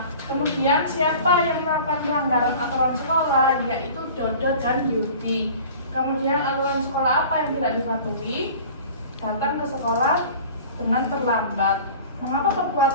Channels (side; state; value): both; inverted; correlation -0.42